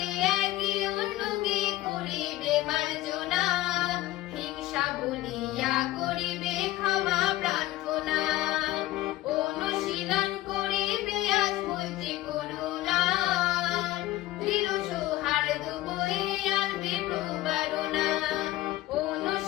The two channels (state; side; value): quieter; right; 16.3 dB